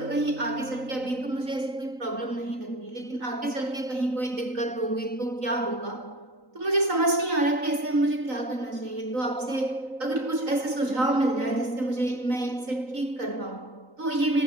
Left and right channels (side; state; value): left; late; 3.9 ms